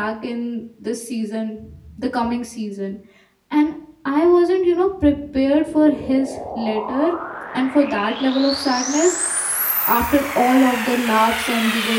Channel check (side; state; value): both; identical; correlation 1.00